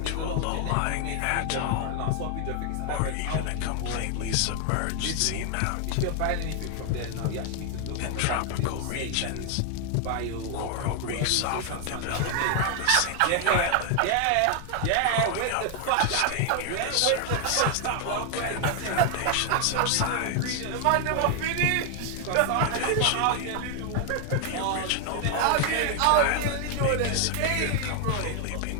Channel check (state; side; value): different; both; correlation 0.00